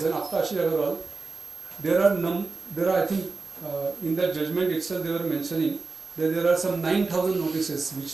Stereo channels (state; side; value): quieter; left; 3.9 dB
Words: and after Ashish Agarwal, there are I think in that judgment itself they were mentioning that there are some 9,000 notices which